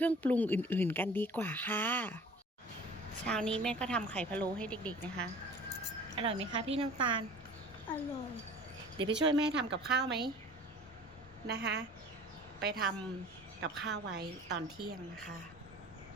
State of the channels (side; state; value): both; normal; correlation 0.45